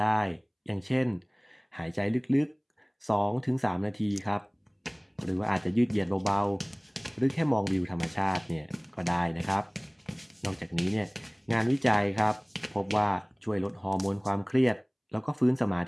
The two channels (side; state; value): both; identical; correlation 1.00